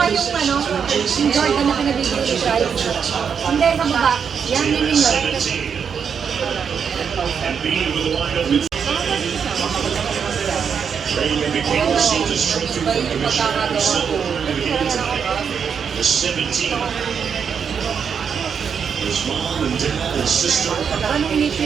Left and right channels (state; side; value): quieter; left; 6.9 dB